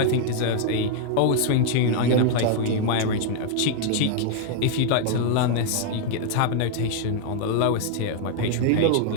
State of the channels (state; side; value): different; both; correlation -0.01